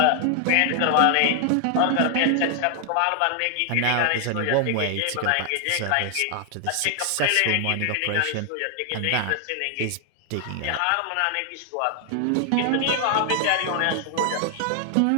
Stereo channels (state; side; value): different; both; correlation 0.00